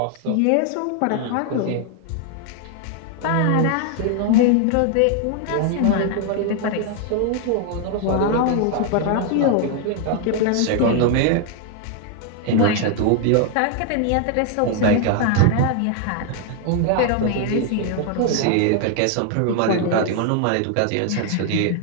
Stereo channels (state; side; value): different; both; correlation 0.00